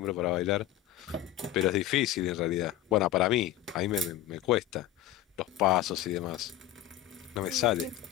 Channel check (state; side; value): quieter; right; 13.3 dB